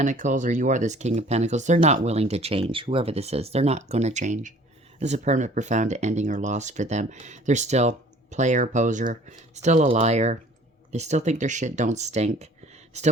or you are this King of Pentacles. They're not willing to change. Whoever this is, they're not going to change. This is a permanent, profound ending or loss for them. They're still player, poser, still a liar. They still think their shit don't stink. Still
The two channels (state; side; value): normal; both; correlation 0.52